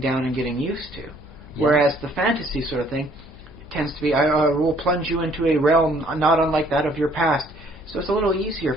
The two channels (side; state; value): left; noise; hum, 21 dB below the sound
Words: and getting used to. Whereas the fantasy sort of thing tends to be, I will plunge you into a realm not unlike that of your past. So it's a little easier